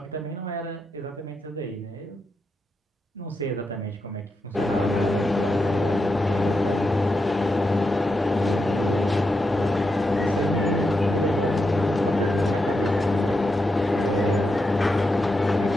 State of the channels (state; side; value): normal; both; correlation 0.85